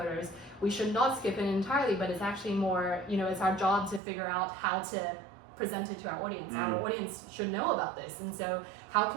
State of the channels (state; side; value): drops out; left; at 4.0 s